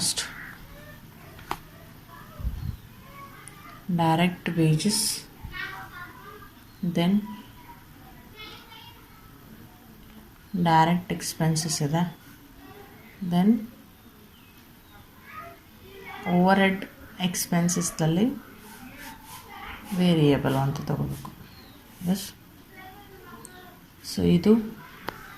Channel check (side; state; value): both; identical; correlation 1.00